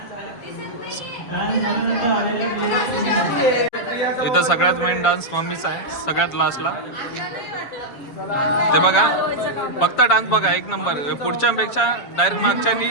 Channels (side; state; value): right; late; 7.2 ms